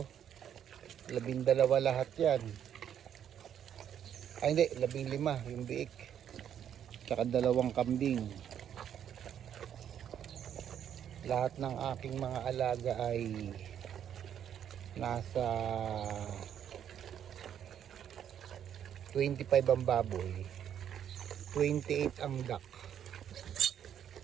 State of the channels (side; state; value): left; quieter; 9.4 dB